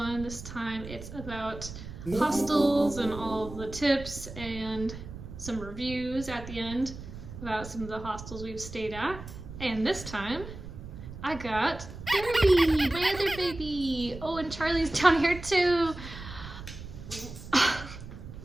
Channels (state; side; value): noise; right; rumble, 12 dB below the sound